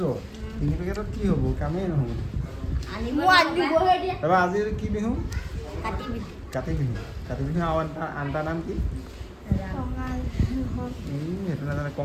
3 পেকেটত কি হ'ব? কামেই নহ'ব। তাৰপৰা আজি কি বিহু? কাতি বিহু। কাতি বিহু আৰু আনটা নাম কি? সেইটো নাজানে।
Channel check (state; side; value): identical; both; correlation 1.00